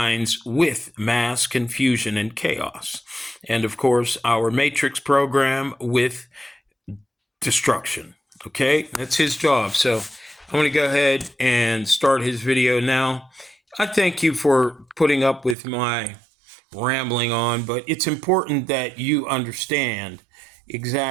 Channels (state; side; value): drops out; left; at 15.6 s